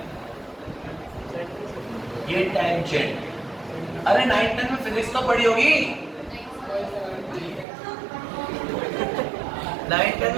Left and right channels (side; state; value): left; drops out; at 7.7 s